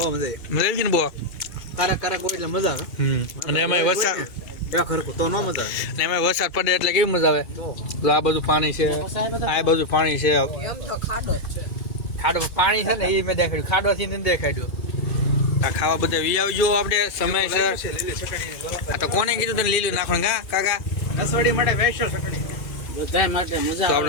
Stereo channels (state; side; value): late; right; 3.3 ms